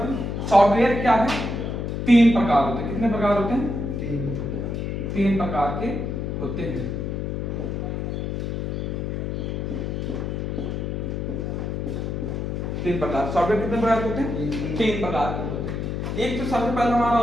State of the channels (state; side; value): noise; left; hum, 3 dB below the sound